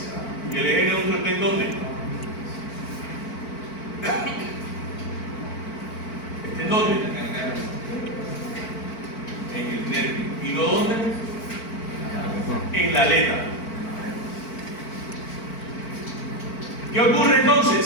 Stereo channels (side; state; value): right; late; 4.5 ms